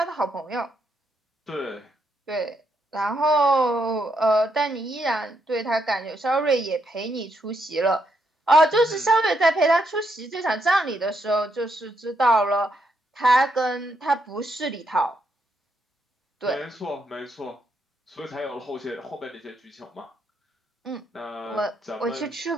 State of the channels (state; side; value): normal; both; correlation 0.78